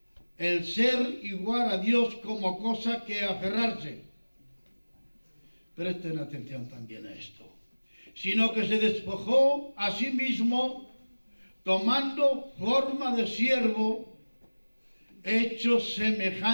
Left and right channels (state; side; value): inverted; both; correlation -1.00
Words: el ser igual a Dios como cosa que aferrarse. Presten atención también a esto. Sino que se despojó a sí mismo, tomando forma de siervo, hecho